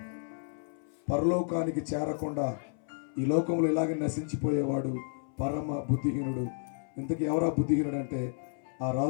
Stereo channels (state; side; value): silent; right; 57 dB below the other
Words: పరలోకానికి చేరకుండా ఈ లోకంలో ఇలాగే నశించిపోయేవాడు పరమ బుద్ధిహీనుడు. ఇంతకీ ఎవరా బుద్ధిహీనుడు అంటే, ఆ